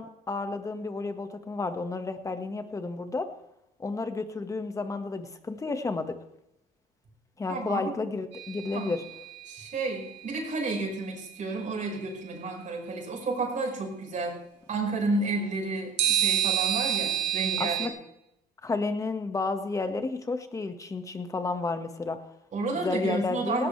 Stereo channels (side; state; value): both; normal; correlation 0.52